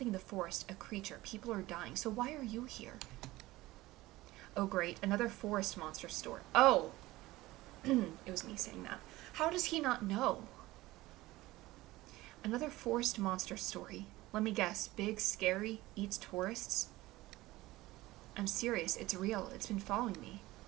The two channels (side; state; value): left; quieter; 18.4 dB